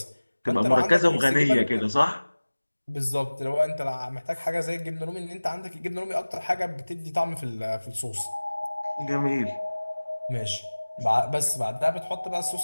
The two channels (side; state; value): both; inverted; correlation -1.00